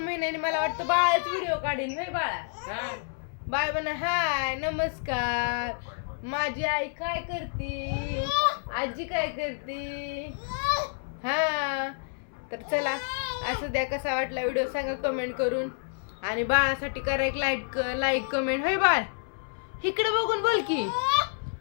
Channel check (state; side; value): silent; right; 59 dB below the other